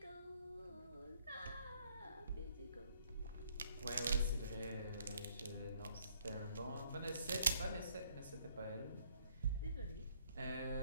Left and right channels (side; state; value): both; inverted; correlation -0.66